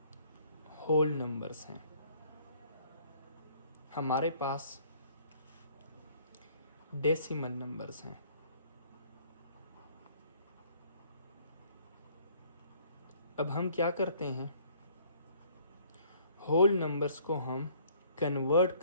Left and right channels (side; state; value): both; inverted; correlation -0.59